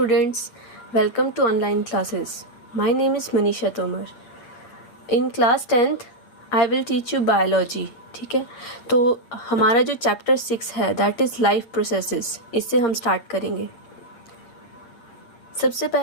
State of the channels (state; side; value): late; right; 8.2 ms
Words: welcome to online classes. My name is Manisha Tomar. In class 10th, I will teach you biology. ठीक है, तो हमारा जो chapter 6 है that is life processes, इससे हम start करेंगे। सबसे